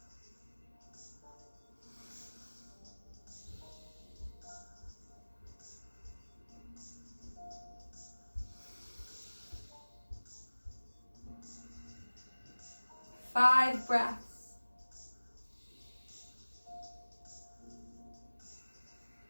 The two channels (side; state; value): both; inverted; correlation -1.00